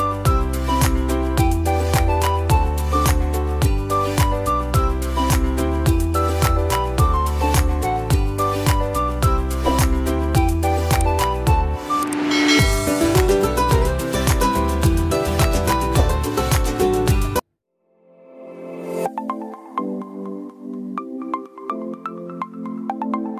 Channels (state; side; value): identical; both; correlation 1.00